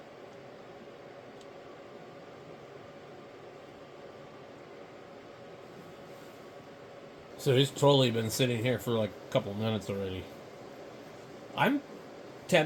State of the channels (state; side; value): identical; both; correlation 1.00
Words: So he's totally been sitting here for like a couple minutes already. I'm